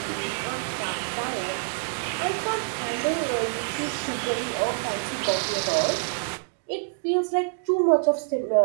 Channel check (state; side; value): silent; left; digital silence